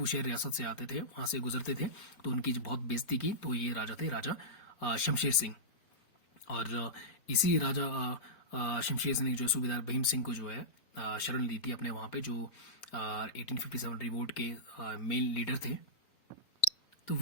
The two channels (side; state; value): right; late; 4.0 ms